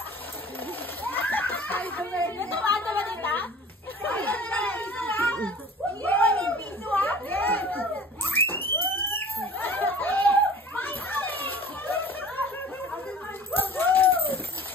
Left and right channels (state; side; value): normal; both; correlation 0.44